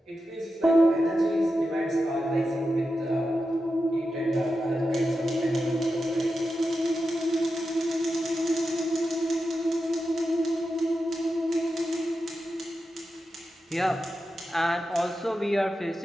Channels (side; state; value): both; normal; correlation 0.90